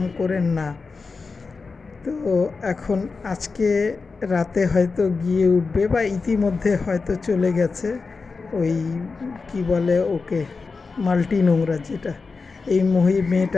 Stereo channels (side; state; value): right; quieter; 4.4 dB